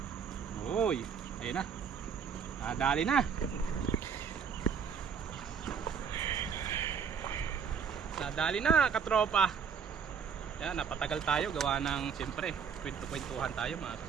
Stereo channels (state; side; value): quieter; left; 6.7 dB